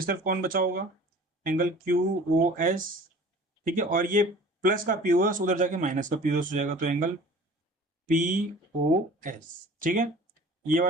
तरफ कौन बचा होगा, एंगल क्यू ओ एस, ठीक है, और ये प्लस का पी ओ एस उधर जाके माइनस का पी ओ एस हो जाएगा, तो एंगल पी ओ एस, ठीक है, ये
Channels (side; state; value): both; normal; correlation 0.45